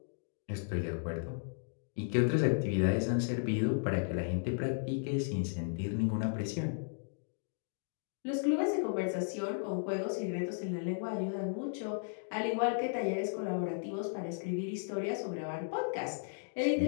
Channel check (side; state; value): right; silent; digital silence